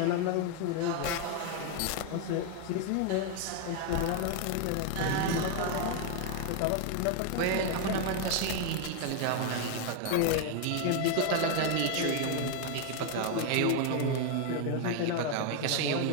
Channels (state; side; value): different; both; correlation 0.01